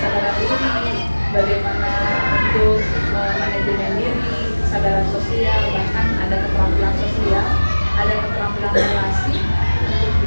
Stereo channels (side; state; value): both; inverted; correlation -1.00